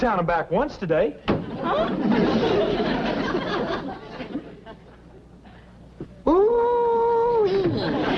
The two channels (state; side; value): identical; both; correlation 1.00